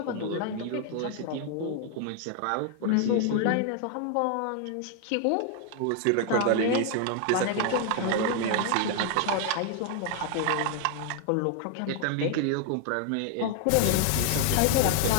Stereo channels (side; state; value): both; different; correlation 0.00